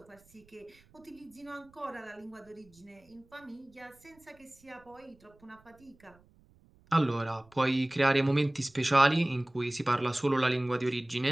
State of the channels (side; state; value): right; noise; rumble, 29 dB below the sound